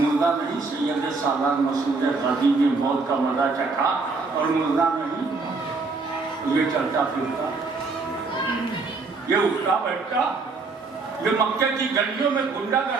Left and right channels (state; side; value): quieter; left; 4.0 dB